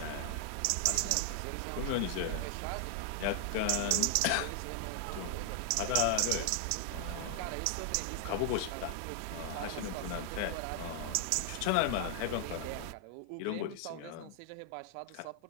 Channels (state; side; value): different; both; correlation 0.00